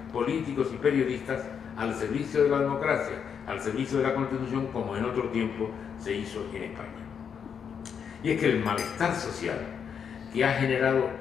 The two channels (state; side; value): quieter; right; 7.3 dB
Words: políticos y periodistas al servicio de la democracia, al servicio de la Constitución, como en otro tiempo se hizo en España. Y es que el malestar social que ha generado